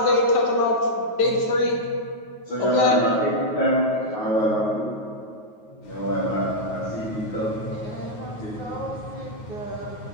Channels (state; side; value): late; right; 9.4 ms